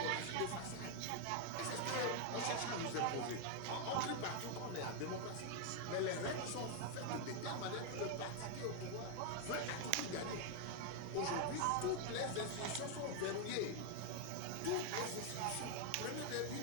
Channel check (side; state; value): both; different; correlation 0.01